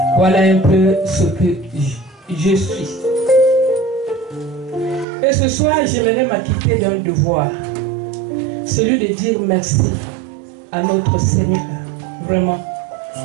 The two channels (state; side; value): drops out; left; at 5.1 s